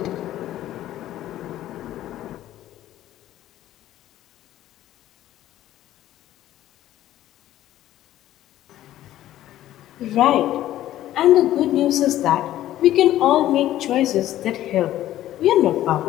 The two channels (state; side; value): quieter; right; 13.4 dB